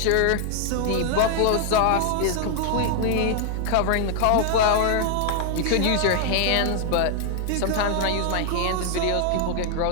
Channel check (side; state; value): both; different; correlation 0.00